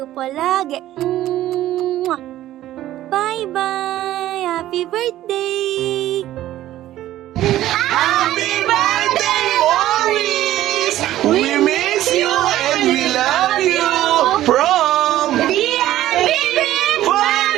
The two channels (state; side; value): quieter; left; 13.9 dB